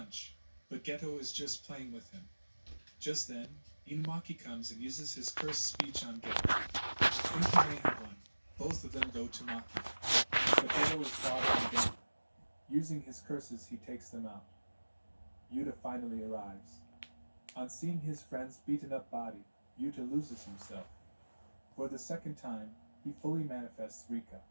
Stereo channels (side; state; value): both; inverted; correlation -1.00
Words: but Geto is just playing with him. Just then, Inumaki comes and uses his cursed speech on Geto. Thinking they have won, both of them go to Maki. But Geto is far from them. Using his curses, he takes them out. Yuta finally arrives. On seeing his friend's beaten up body, Yuta loses himself. For the second time, he fully manifests Rika.